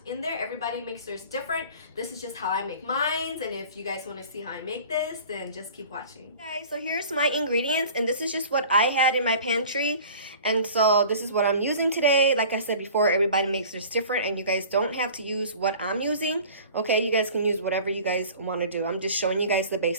in there. Everybody makes theirs different. This is just how I make mine, and if you guys want to see how I make this, then just keep watching. Okay, so here's my ingredients and this is just what I had in my pantry. And so this is what I'm using today. Like I said before, everybody makes this different and you guys don't have to use what I'm using. Okay, you guys can use whatever you guys want to do. I'm just showing you guys the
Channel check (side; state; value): both; inverted; correlation -0.44